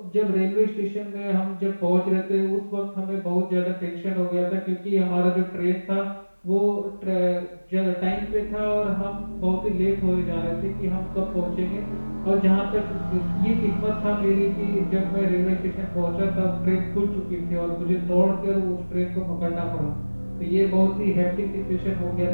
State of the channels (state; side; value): inverted; both; correlation -1.00